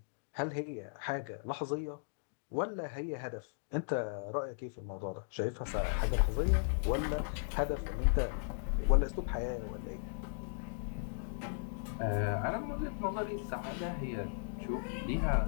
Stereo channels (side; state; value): right; silent; digital silence